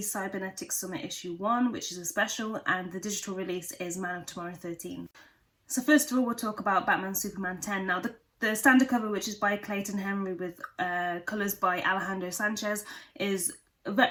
Cybernetic Summit Issue 1, which is a special, and the digital release is Man of Tomorrow 13. So first of all, we'll talk about Batman Superman 10. Now, the standard cover, which is by Clayton Henry with colours by Alejandro Sanchez, is a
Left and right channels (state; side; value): identical; both; correlation 1.00